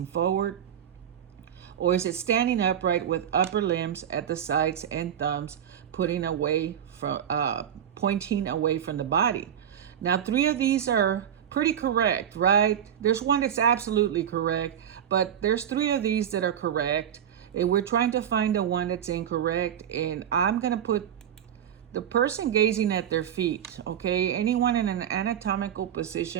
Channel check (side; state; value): left; quieter; 9.4 dB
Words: forward? Or is it standing upright with upper limbs at the sides and thumbs pointing away from the body? Now, 3 of these are pretty correct, right? There's one that's absolutely correct, but there's 3 of these that are correct, and we're trying to find the one that's incorrect. And I'm going to put the person gazing at their feet, okay? Anyone in an anatomical